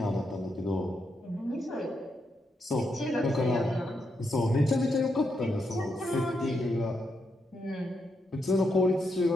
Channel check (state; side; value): normal; both; correlation 0.81